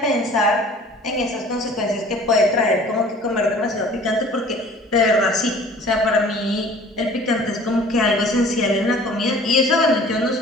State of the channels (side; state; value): both; normal; correlation 0.49